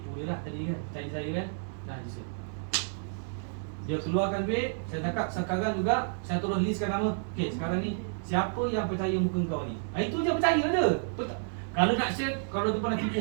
dia lah tadi kan, percaya saya kan. Dia keluarkan duit, saya cakap sekarang juga saya terus listkan nama. Okey, sekarang ni siapa yang percaya muka kau ni? Itu je percaya je. Kalau nak share, kalau dia pernah tipu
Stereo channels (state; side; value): silent; left; digital silence